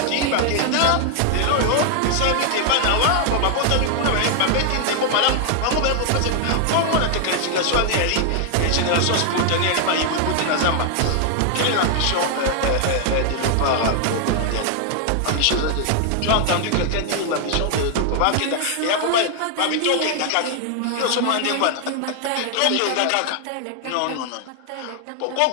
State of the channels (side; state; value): both; different; correlation 0.00